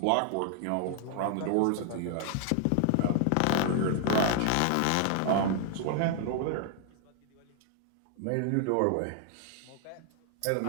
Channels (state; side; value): different; both; correlation 0.00